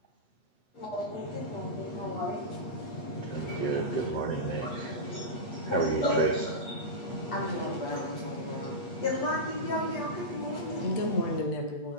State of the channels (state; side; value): late; right; 8.4 ms